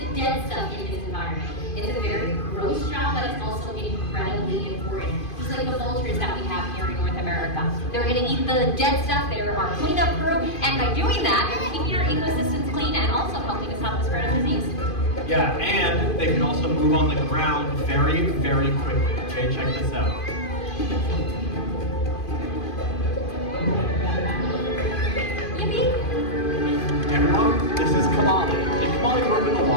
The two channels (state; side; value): late; right; 2.5 ms